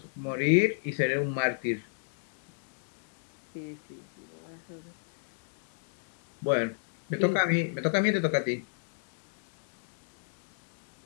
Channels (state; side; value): silent; right; digital silence